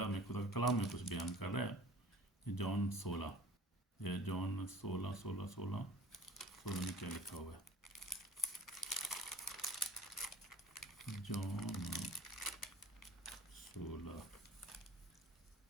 हमें खुदा का कलाम में कुछ बयान कर रहा है। जॉन 16 में क्या लिखा हुआ है। जॉन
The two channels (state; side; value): normal; both; correlation 0.46